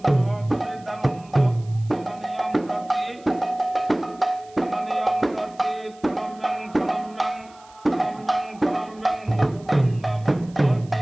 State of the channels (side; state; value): right; noise; hiss, 27 dB below the sound